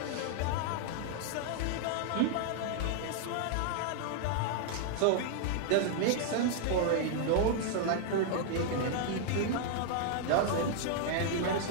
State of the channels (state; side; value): different; both; correlation -0.01